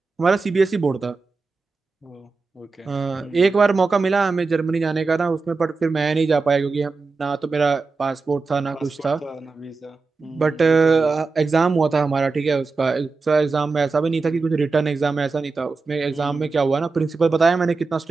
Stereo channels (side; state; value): left; quieter; 4.1 dB